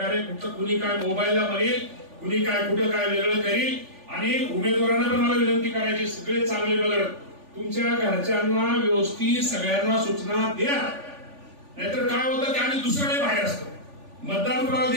कुठं कुणी काय मोबाईलला म्हणेल, कुणी काय कुठं काय वेगळं करील. आणि उमेदवारांना पण मला विनंती करायची, सगळे चांगले बघत तुमच्या घरच्यांना व्यवस्थित सगळ्यांना सूचना द्या. नाहीतर काय होतं की आम्ही दुसऱ्याकडे बाहेर असतो, मतदान कोणाला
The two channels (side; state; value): left; late; 3.4 ms